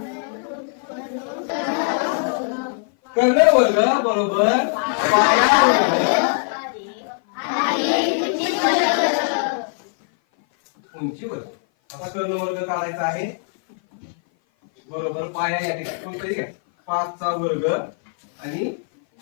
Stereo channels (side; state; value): right; silent; 57 dB below the other